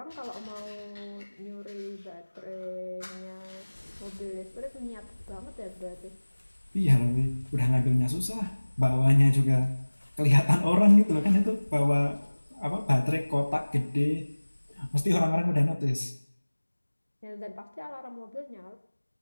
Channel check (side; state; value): both; inverted; correlation -1.00